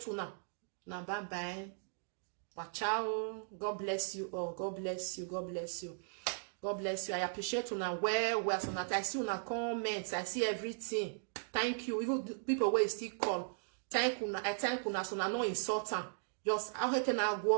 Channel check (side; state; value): left; silent; digital silence